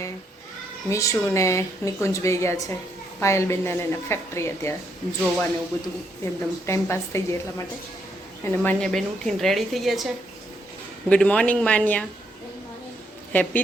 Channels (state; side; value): normal; both; correlation 0.75